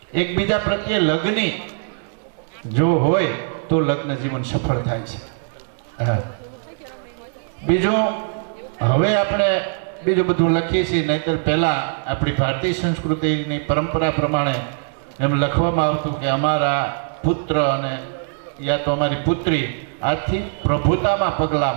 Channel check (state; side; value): silent; left; 65 dB below the other